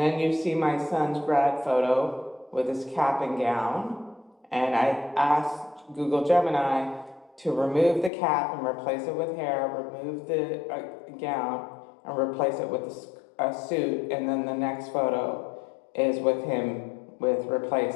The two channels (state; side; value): drops out; right; at 8.1 s